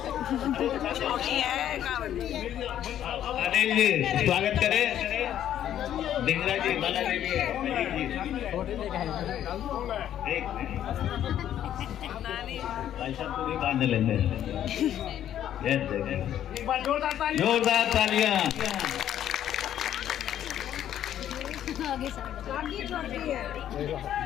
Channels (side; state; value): right; quieter; 11.0 dB